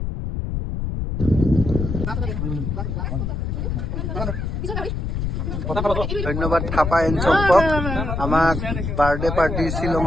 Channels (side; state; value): left; noise; rumble, 3 dB below the sound